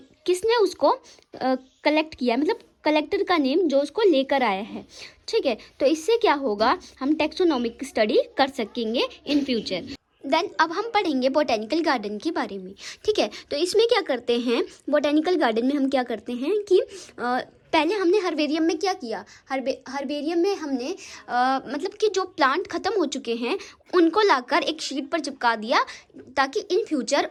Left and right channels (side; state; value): both; identical; correlation 1.00